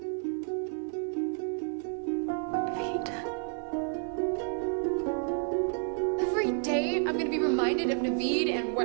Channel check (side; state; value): left; silent; 58 dB below the other